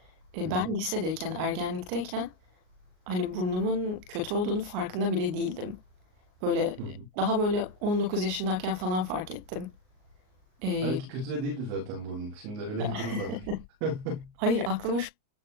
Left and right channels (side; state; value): left; late; 38 ms